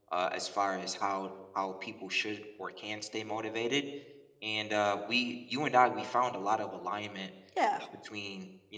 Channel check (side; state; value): both; identical; correlation 1.00